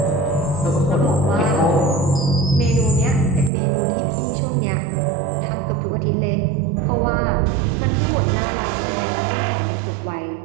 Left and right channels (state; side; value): drops out; left; at 3.5 s